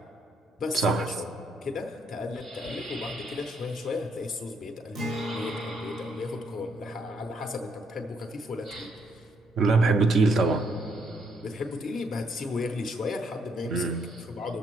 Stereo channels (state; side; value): normal; both; correlation 0.72